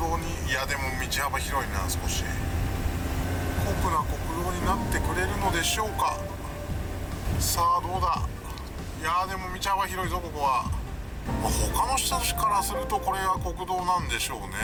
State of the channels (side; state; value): both; identical; correlation 1.00